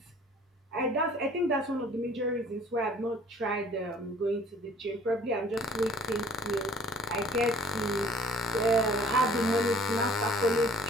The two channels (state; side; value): normal; both; correlation 0.53